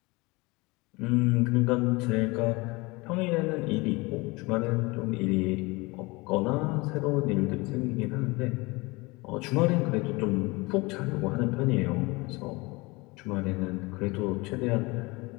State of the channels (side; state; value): right; quieter; 24.5 dB